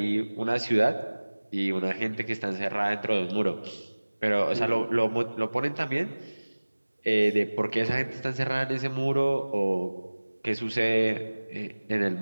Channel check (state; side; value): inverted; both; correlation -1.00